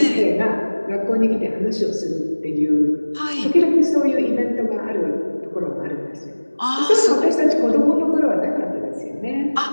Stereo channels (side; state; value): both; inverted; correlation -1.00